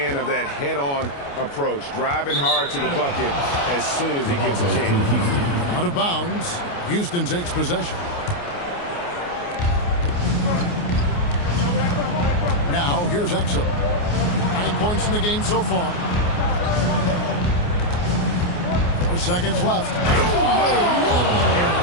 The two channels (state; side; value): late; right; 29 ms